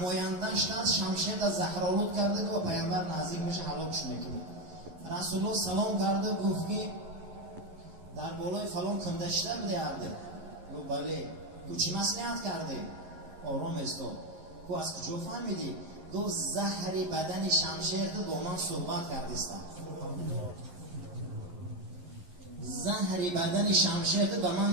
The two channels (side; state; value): left; late; 11 ms